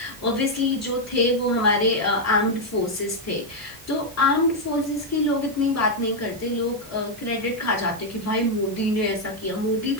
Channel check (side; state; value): both; normal; correlation -0.01